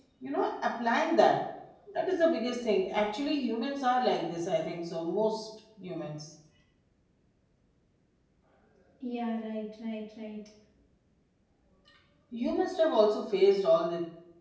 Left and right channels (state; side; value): identical; both; correlation 1.00